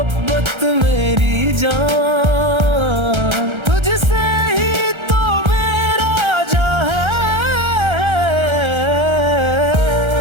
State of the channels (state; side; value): late; left; 1.3 ms